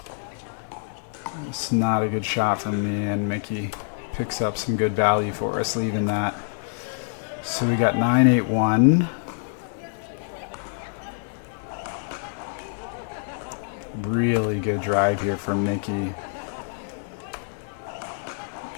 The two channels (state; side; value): silent; right; digital silence